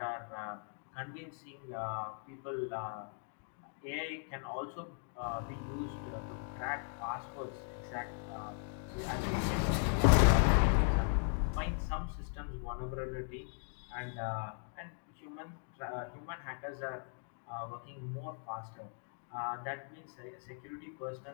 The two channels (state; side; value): silent; right; 52 dB below the other